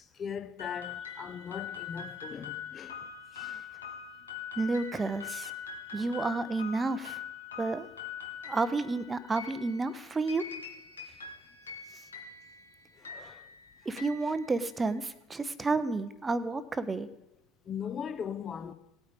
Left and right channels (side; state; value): both; normal; correlation 0.78